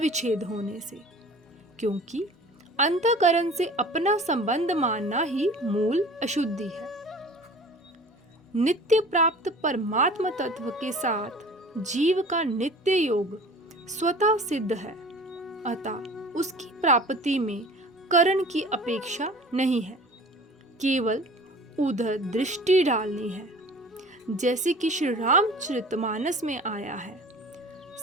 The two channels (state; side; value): normal; both; correlation 0.44